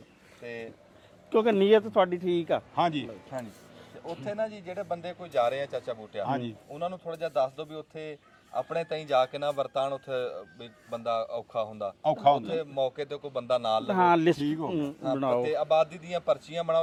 ਤੇ ਕਿਉਂਕਿ ਨੀਅਤ ਤੁਹਾਡੀ ਠੀਕ ਆ। ਹਾਂਜੀ ਹਾਂਜੀ ਤੇ ਉੱਥੇ ਨਾ ਜੀ ਜਿਹੜੇ ਬੰਦੇ ਕੋਈ ਜਾ ਰਹੇ ਆ ਚਾਚਾ ਬੂਟਿਆ, ਉਹਨਾਂ ਨੂੰ ਥੋੜਾ ਜਿਹਾ ਦੱਸ ਦਿਓ ਵੀ ਉੱਥੇ ਆਪਣੇ ਤਾਈਂ ਜਾ ਕੇ ਨਾ ਵਰਤਾਨ। ਉੱਥੇ ਵੀ ਬੰਦਾ ਔਖਾ ਹੁੰਦਾ, ਉੱਥੇ ਮੌਕੇ ਤੇ ਕੋਈ ਬੰਦਾ ਨਾਲ ਲਵੇ। ਹਾਂ ਲਿਸਟ ਬਣਾਓ ਤੇ ਆਬਾਦੀ ਦੀਆਂ ਪਰਚੀਆਂ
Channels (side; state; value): both; identical; correlation 1.00